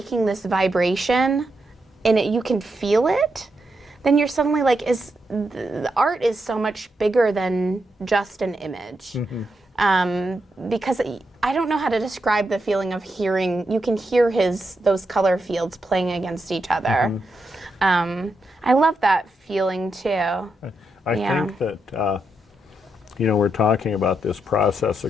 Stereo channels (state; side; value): normal; both; correlation 0.84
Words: this vibration, and you can feel it, then you're suddenly like, the art is so much bigger than just an image. Because I don't know how to describe the feeling of hearing. You can hear those color fields playing against each other. I love that feeling too. I think that we're talking about this process